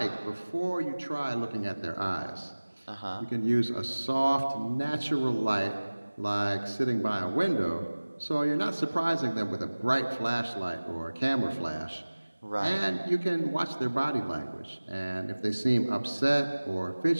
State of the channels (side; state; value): both; inverted; correlation -1.00